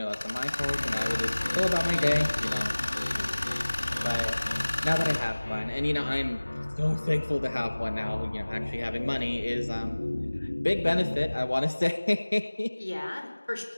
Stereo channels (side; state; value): both; inverted; correlation -1.00